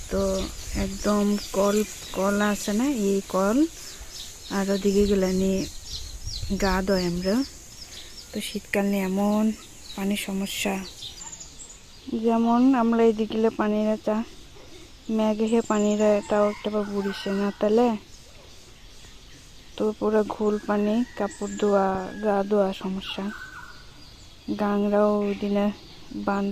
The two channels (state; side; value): identical; both; correlation 1.00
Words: তো একদম কল আছে না এই কল আর ওদিকে গেলে নিয়ে গা দয় আমরা তো শীতকাল নিয়ে এমন পানির সমস্যা যেমন আমরা এদিকে গেলে পানিরা চা ম্যাগে হে পানিরা এটাও একটা বুড়িছে না তাহলে তো পুরো ঘোল পানি কাপড় ধোয়া গা ধোয়া সমস্যা গাংরাও ওই দিনে